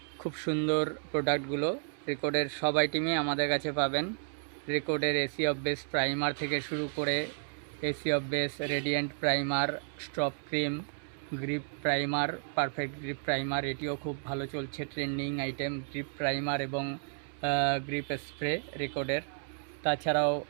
খুব সুন্দর প্রোডাক্টগুলো রেকর্ডের সব আইটেমই আমাদের কাছে পাবেন। রেকর্ডের এসি অফ বেস প্রাইমার থেকে শুরু করে AC of base radiant primer, stop cream, grip primer, perfect grip primer, এটিও খুব ভালো চলছে, ট্রেন্ডিং আইটেম। গ্রিপ প্রাইমার এবং গ্রিপ স্প্রে রেকর্ডের। তাছাড়াও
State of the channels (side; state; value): left; silent; 56 dB below the other